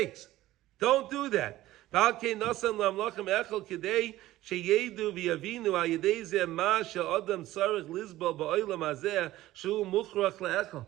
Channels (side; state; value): left; quieter; 15.8 dB